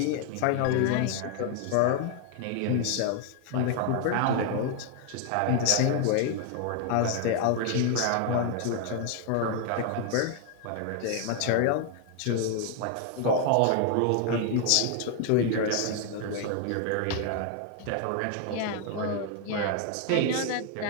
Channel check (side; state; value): both; different; correlation 0.00